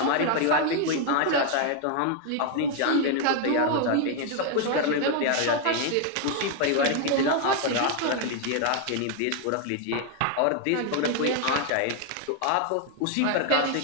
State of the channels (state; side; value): different; both; correlation 0.00